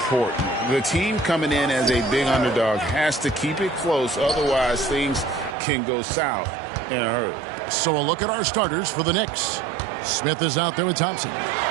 The team coming in as a big underdog has to keep it close, otherwise things can go south in a hurry. So a look at our starters for the Knicks. Smith is out there with Thompson.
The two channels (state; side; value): drops out; left; at 5.6 s